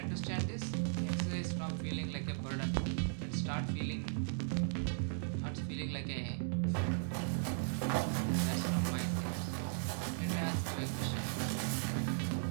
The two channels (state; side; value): silent; left; digital silence